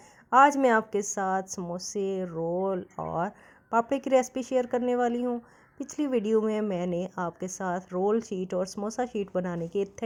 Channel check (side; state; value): both; identical; correlation 1.00